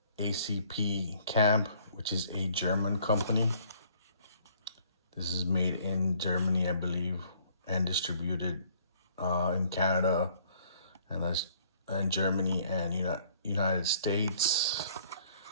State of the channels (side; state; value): both; inverted; correlation -0.60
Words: ACP Camp, which is a German company. This is made in Germany, I believe, and distributed in Canada and Germany and United States.